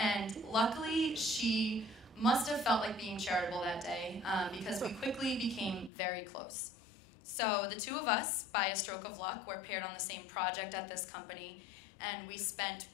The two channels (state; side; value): drops out; right; at 5.9 s